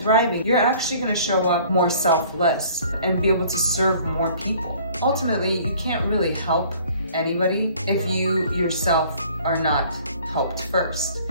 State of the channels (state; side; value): inverted; both; correlation -0.53